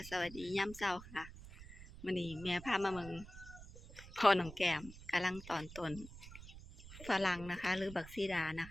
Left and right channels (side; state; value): right; noise; rumble, 15 dB below the sound